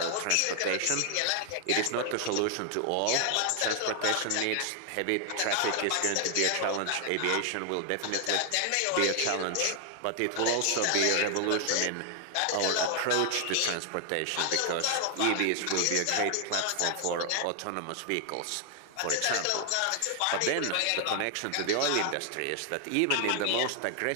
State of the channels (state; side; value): different; both; correlation 0.00